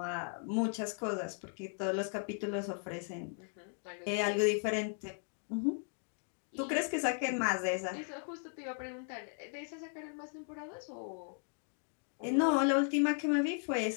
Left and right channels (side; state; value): right; silent; 53 dB below the other